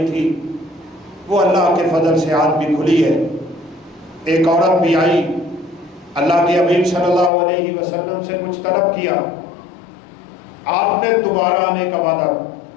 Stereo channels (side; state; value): right; drops out; at 7.3 s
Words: تھی، وہ اللہ کے فضل سے آج بھی کھلی ہے۔ ایک عورت بھی آئی، اللہ کے حبیب صلی اللہ علیہ وسلم سے کچھ طلب کیا، آپ نے دوبارہ آنے کا وعدہ،